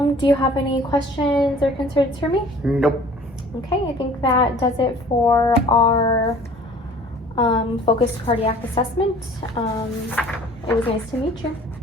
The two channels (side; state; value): both; normal; correlation 0.49